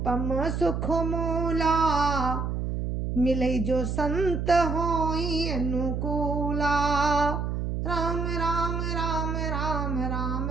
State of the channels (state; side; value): noise; right; hum, 2 dB below the sound